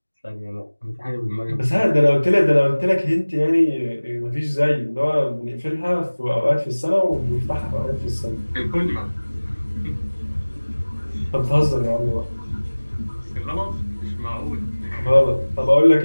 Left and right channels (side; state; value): both; inverted; correlation -1.00